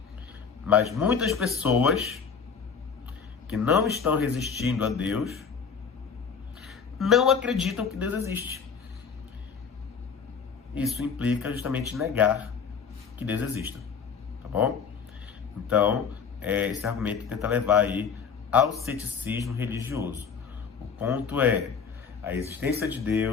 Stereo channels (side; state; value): right; quieter; 6.2 dB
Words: Mas muitas pessoas que não estão resistindo a Deus, não acreditam que Deus existe. Isso implica justamente negar que Deus exista, tá bom? Então, esse argumento tenta levar aí ao ceticismo religioso. O ponto é a existência de